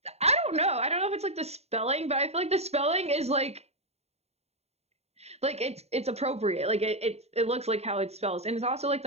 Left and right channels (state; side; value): late; left; 0.31 ms